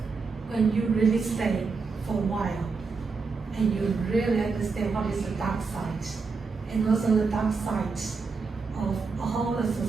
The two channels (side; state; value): left; quieter; 4.6 dB